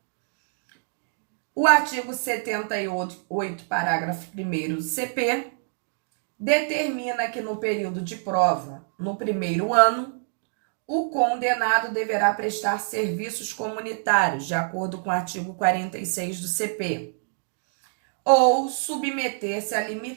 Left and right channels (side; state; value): left; silent; digital silence